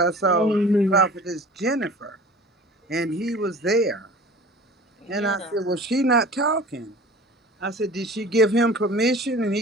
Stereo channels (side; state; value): both; normal; correlation 0.42